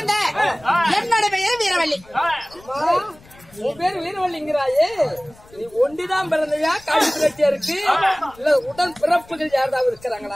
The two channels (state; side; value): noise; left; rumble, 25 dB below the sound